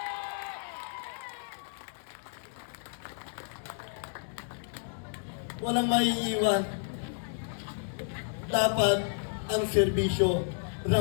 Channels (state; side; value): silent; right; digital silence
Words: Walang maiiwan. Dapat ang serbisyo